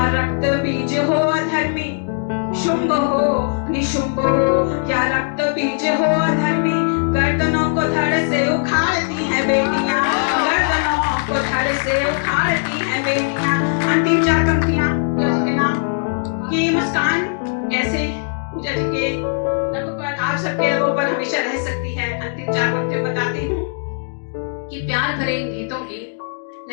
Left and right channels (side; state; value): right; silent; digital silence